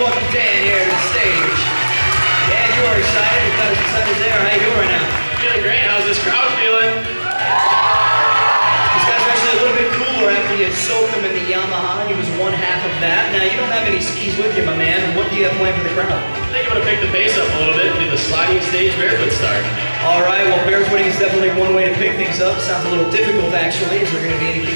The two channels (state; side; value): inverted; both; correlation -1.00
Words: welcome Dan here to the stage. Dan, you are excited. You've got us excited there. How you doing right now? Feeling great. How's this crowd feeling? These guys are actually a little bit cooler after you soaked them in the Yamaha. He was one half of that. Now, you don't have any skis with you, my man. What do you have planned for the crowd? I think I'm going to pick the pace up a little bit and do the sliding stage barefoot start. All right, well, barefooting is definitely one way to pick things up. Sounds a little difficult, actually. Is there going to be anything